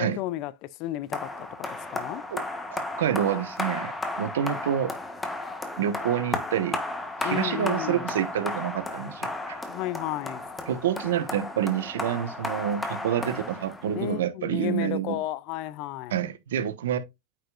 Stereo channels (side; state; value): left; quieter; 3.7 dB